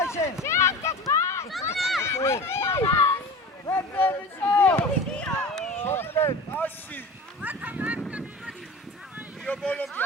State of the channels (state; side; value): normal; both; correlation 0.34